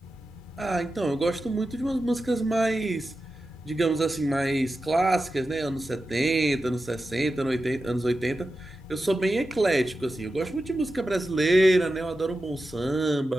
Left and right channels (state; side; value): normal; both; correlation 0.92